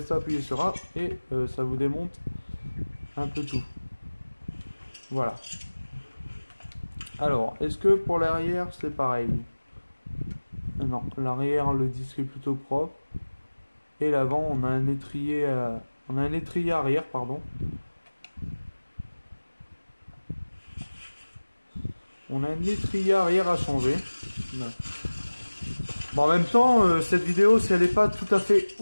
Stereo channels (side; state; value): both; inverted; correlation -1.00